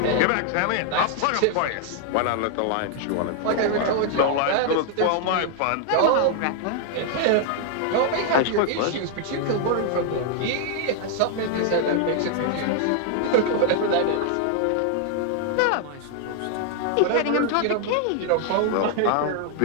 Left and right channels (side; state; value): both; different; correlation 0.00